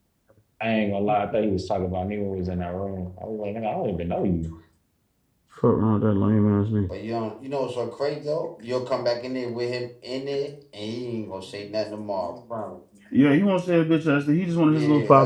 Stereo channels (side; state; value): both; identical; correlation 1.00